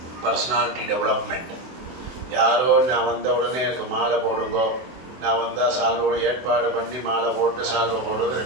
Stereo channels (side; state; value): left; late; 24 ms